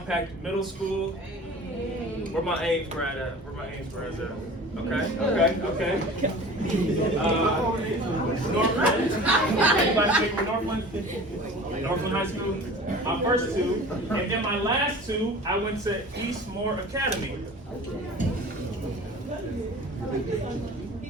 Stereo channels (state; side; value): normal; both; correlation 0.41